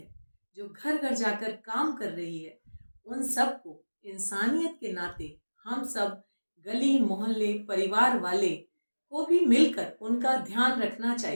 जो घर घर जाकर काम कर रही है, उन सबको इंसानियत के नाते हम सब गली मोहल्ले परिवार वाले को भी मिलकर उनका ध्यान रखना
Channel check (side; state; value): both; inverted; correlation -1.00